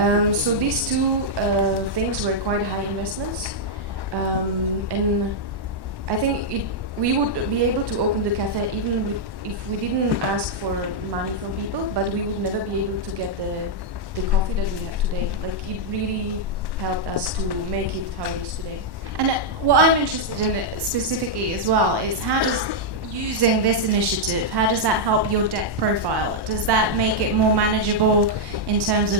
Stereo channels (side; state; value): left; late; 1.1 ms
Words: So these two things were quite high investments. And I think we would be able to open the cafe even if we didn't ask for money from people, but we would never be able to get the coffee that we have today. Like, it really helped us to make it how it is today. And what I'm interested in specifically as well is how does using this initiative, how does that help your debt profile? Does that make it more manageable in terms